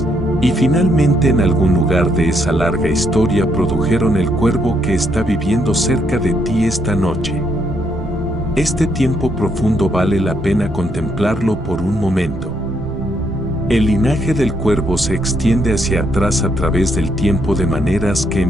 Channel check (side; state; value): both; normal; correlation 0.74